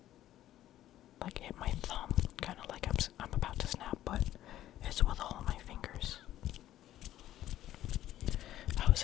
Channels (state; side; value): quieter; right; 13.2 dB